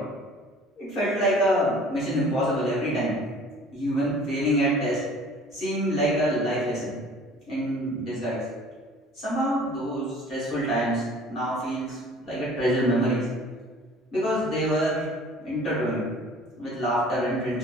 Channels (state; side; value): normal; both; correlation 0.49